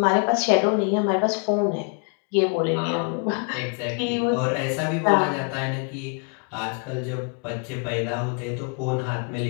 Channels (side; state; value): right; quieter; 37.5 dB